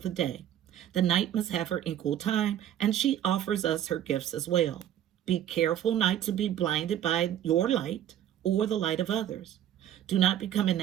the day. The night must have her equal time, and she offers us her gifts as well. Be careful not to be blinded by your light or the light of others. Do not become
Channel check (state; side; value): quieter; left; 11.1 dB